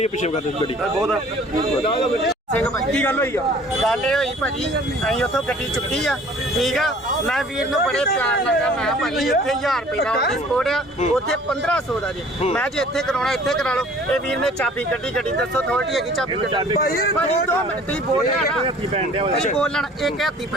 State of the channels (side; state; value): both; normal; correlation 0.51